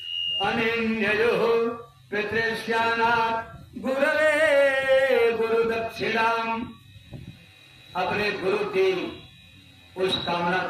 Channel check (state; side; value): identical; both; correlation 1.00